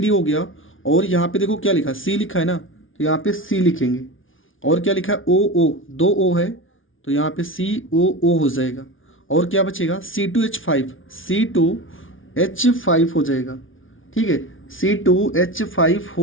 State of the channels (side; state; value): right; late; 0.57 ms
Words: हो गया, और यहाँ पे देखो क्या लिखा, C लिखा है ना, तो यहाँ पे C लिखेंगे। और क्या लिखा है, OO, 2 O है, तो यहाँ पे COO हो जाएगा। और क्या बचेगा, C2H5 हो जाएगा। ठीक है, C2H5